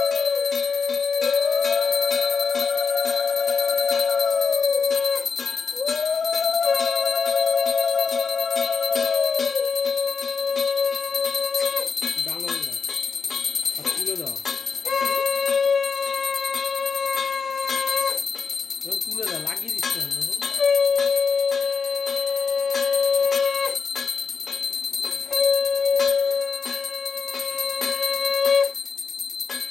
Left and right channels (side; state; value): right; quieter; 5.4 dB